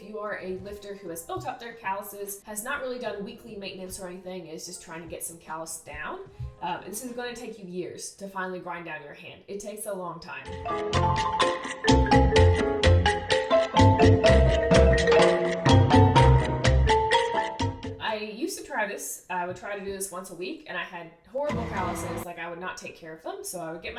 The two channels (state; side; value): identical; both; correlation 1.00